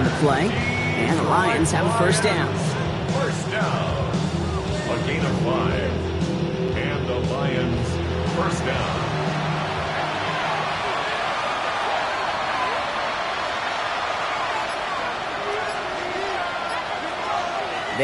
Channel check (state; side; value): identical; both; correlation 1.00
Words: the play. And the Lions have a first down. First down. A gain of 5. And the Lions first down.